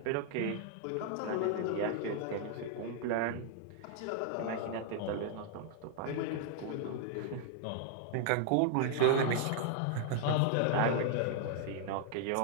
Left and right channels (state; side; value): different; both; correlation 0.00